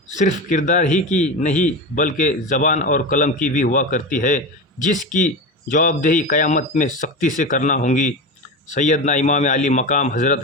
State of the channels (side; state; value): both; normal; correlation 0.23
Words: सिर्फ़ किरदार ही की नहीं बल्कि ज़बान और कलम की भी हुआ करती है, जिसकी जवाबदेही क़यामत में सख्ती से करना होगी। सैयदना इमाम अली मकाम